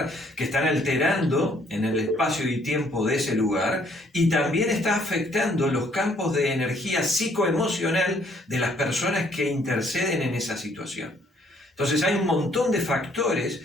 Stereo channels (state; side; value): normal; both; correlation 0.65